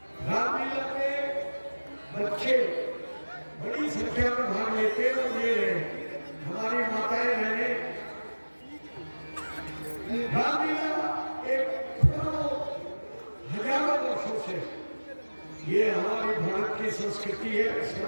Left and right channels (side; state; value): both; inverted; correlation -1.00